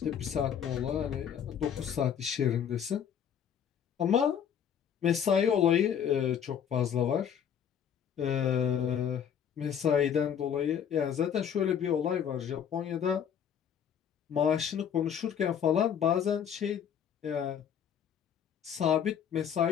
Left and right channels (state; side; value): quieter; right; 8.4 dB